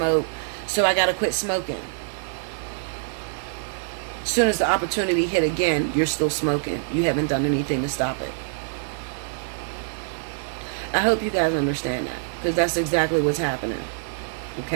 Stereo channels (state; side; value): silent; left; digital silence